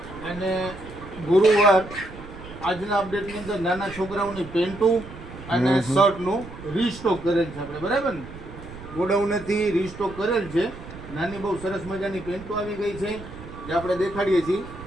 અને ગુરુવાર આજના અપડેટની અંદર નાના છોકરાઓની પેન્ટો અને શર્ટનું રીસ્ટોક કરેલ છે આપણે, બરાબર ને? ગોડાઉનેથી રીસ્ટોક કરેલ છે. નાની બહુ સરસ મજાની પેન્ટો આવી ગઈ છે જે આપણે દેખાડીએ છીએ.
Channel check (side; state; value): right; noise; rumble, 14 dB below the sound